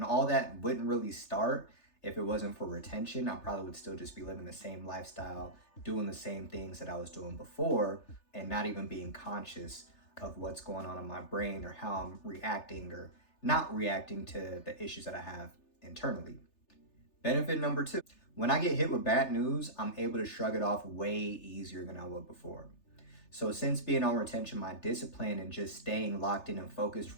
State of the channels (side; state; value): right; late; 3.3 ms